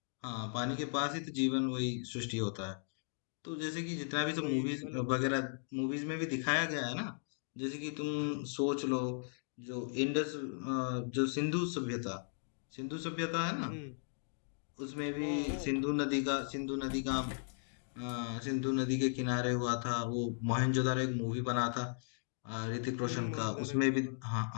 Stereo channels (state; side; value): silent; right; digital silence